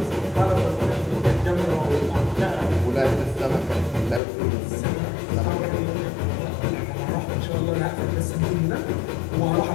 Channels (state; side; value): drops out; right; at 4.2 s